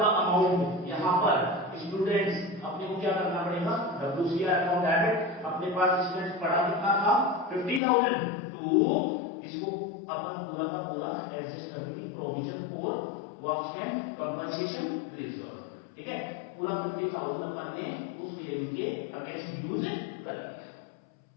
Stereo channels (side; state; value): right; drops out; at 7.8 s